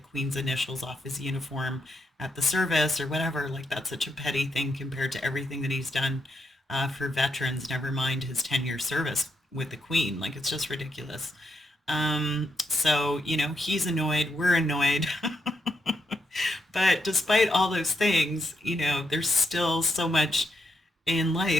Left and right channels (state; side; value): normal; both; correlation 0.81